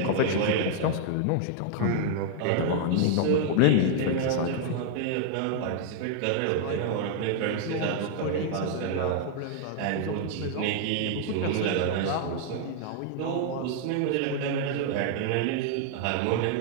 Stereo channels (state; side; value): different; both; correlation -0.01